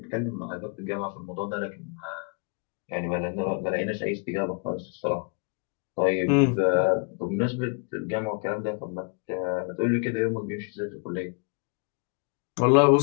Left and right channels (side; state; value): right; quieter; 37.3 dB